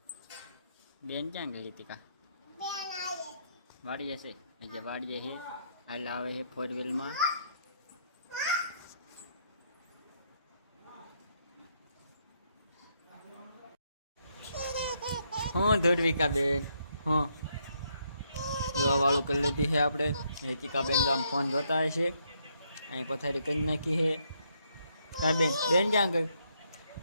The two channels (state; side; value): inverted; both; correlation -0.74